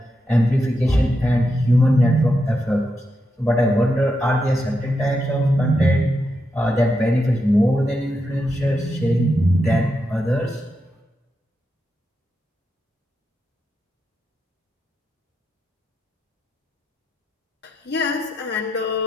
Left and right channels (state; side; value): normal; both; correlation 0.85